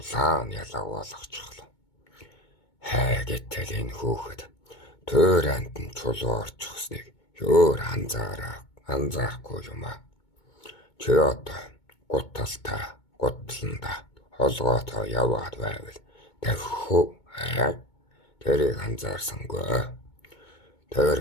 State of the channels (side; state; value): right; late; 2.2 ms